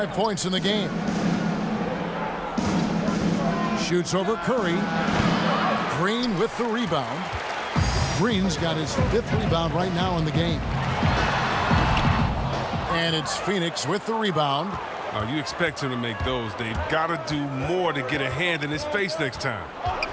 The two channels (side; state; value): both; identical; correlation 1.00